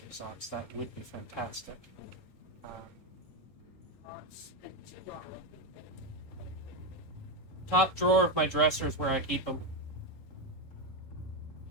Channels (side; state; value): right; late; 3.7 ms